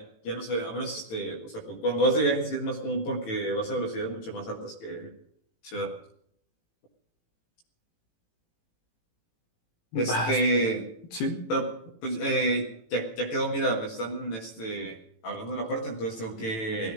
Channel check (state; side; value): late; right; 18 ms